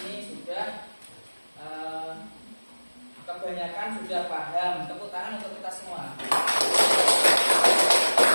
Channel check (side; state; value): both; inverted; correlation -1.00